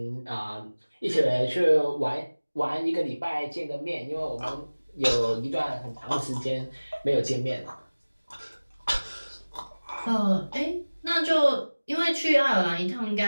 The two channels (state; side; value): inverted; both; correlation -1.00